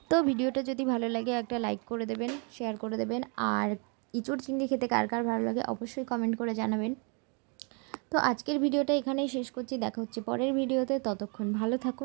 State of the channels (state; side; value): quieter; left; 36.0 dB